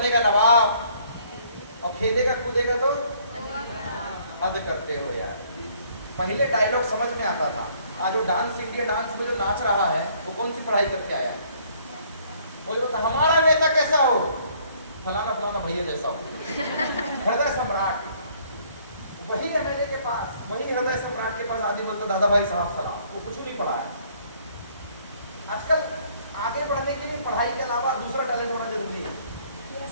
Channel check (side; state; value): both; inverted; correlation -0.62